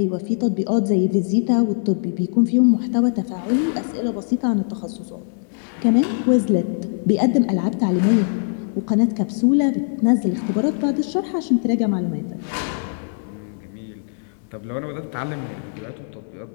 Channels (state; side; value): silent; right; digital silence